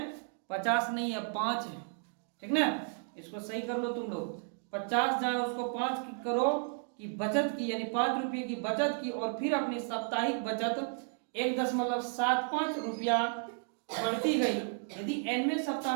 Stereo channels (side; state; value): left; silent; 56 dB below the other